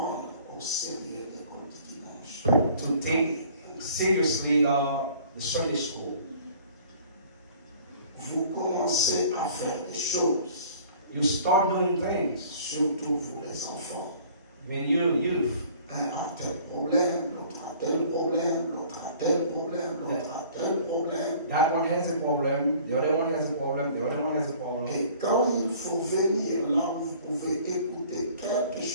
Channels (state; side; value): inverted; both; correlation -0.51